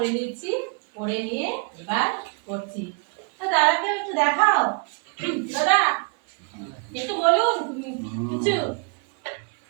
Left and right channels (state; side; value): quieter; left; 37.0 dB